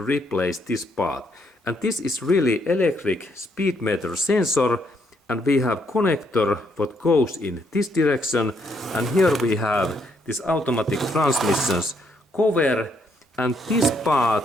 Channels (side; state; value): both; normal; correlation 0.73